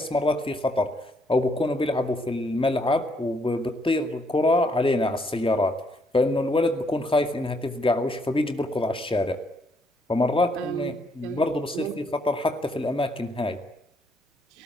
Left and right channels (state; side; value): normal; both; correlation 0.71